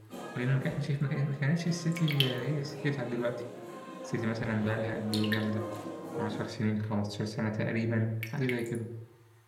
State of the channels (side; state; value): both; identical; correlation 1.00